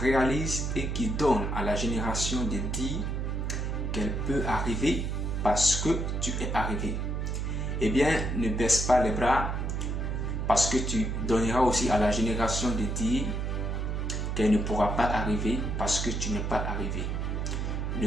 et qui donne à la génération de dire qu'elle peut arriver parce que tu es arrivé. Eh bien, ne baisse pas les bras parce que tu donneras aussi à la génération de dire qu'elle ne pourra pas arriver parce que tu n'es pas arrivé.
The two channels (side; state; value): right; noise; hum, 1 dB below the sound